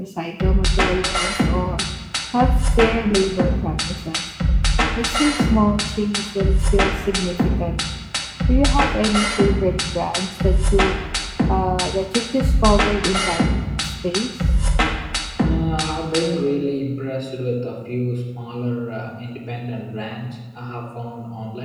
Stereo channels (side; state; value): both; identical; correlation 1.00